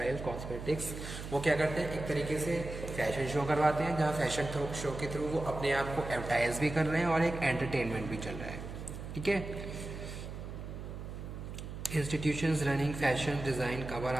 cosmetics, वो क्या करते हैं एक तरीके से फैशन शो करवाते हैं, जहाँ फैशन शो के थ्रू वो अपने आप को एडवर्टाइज भी कर रहे हैं और एक एंटरटेनमेंट भी चल रहा है, ठीक है। Institutions running fashion design cover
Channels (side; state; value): right; noise; hum, 9 dB below the sound